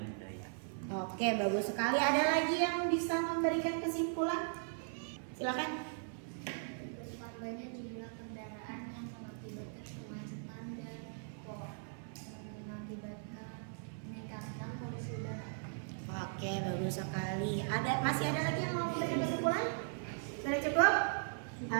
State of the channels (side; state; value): left; silent; 52 dB below the other